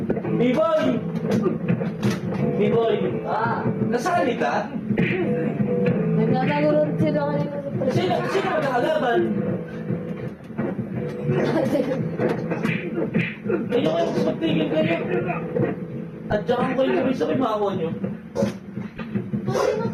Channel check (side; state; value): both; identical; correlation 1.00